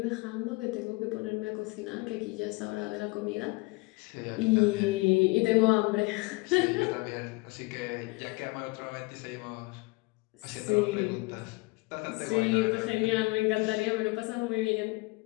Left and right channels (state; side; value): quieter; right; 25.1 dB